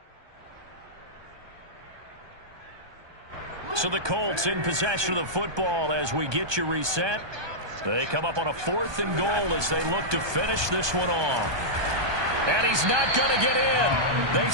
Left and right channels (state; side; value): late; left; 1.2 ms